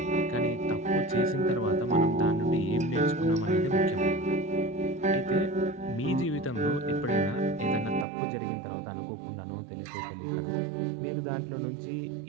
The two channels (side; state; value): left; drops out; at 8.1 s